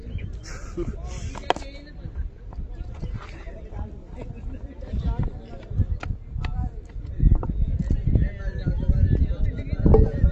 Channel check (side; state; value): both; identical; correlation 1.00